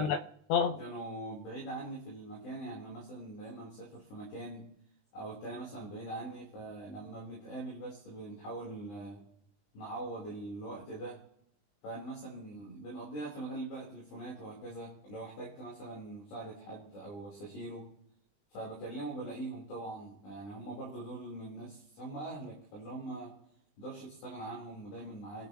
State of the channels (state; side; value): late; right; 19 ms